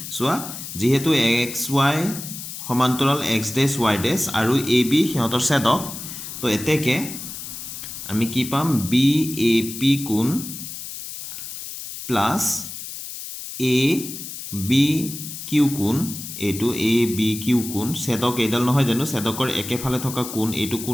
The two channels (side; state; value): left; noise; hiss, 9 dB below the sound